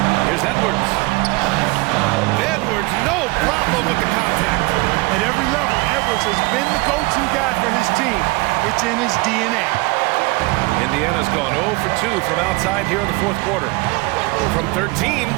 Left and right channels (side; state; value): left; quieter; 24.7 dB